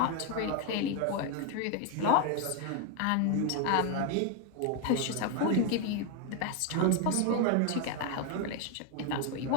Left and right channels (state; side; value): different; both; correlation 0.01